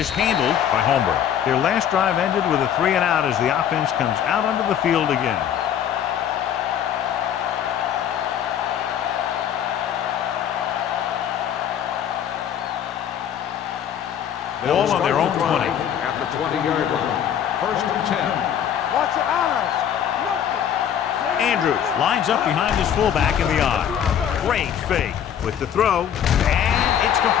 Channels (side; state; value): right; quieter; 9.4 dB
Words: handled by Holmberg. Their last drive ended with a 3-and-out as the offense comes out onto the field again. Ball on their own 20. At the 20-yard line. First and 10. Watch your eyes. Nothing. Andrews lines up behind his fullback in the eye. Great fake with the throw, and it's